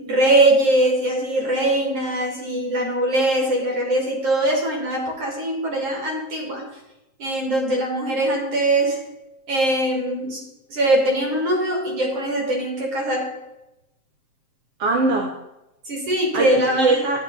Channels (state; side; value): late; left; 7.5 ms